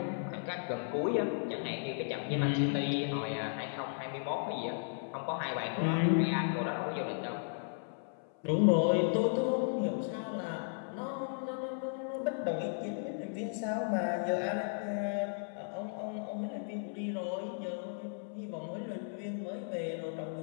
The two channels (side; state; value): right; silent; 54 dB below the other